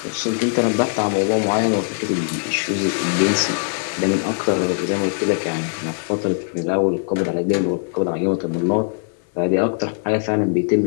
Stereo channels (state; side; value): silent; right; digital silence